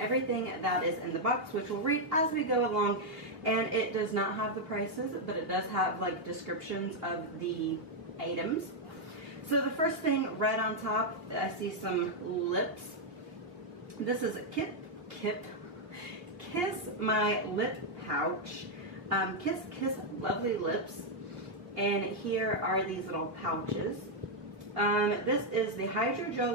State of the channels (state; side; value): late; left; 2.8 ms